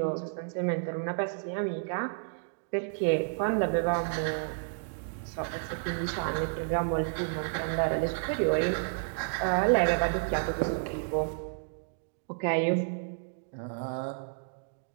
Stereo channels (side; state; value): left; silent; digital silence